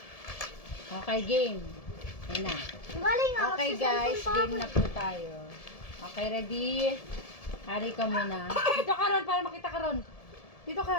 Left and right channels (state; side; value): late; right; 1.7 ms